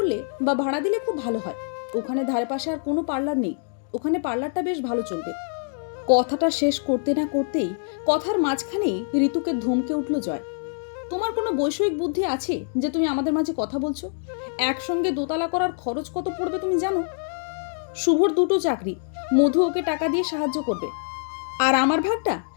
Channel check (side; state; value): right; silent; digital silence